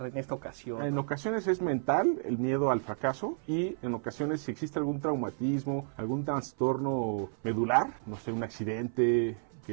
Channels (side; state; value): left; silent; 57 dB below the other